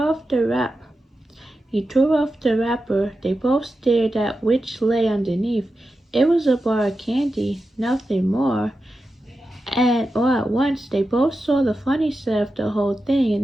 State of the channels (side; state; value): both; normal; correlation 0.91